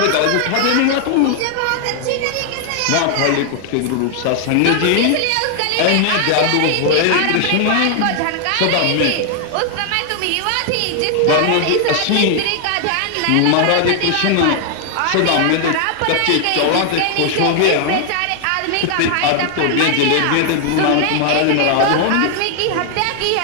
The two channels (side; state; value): both; different; correlation 0.00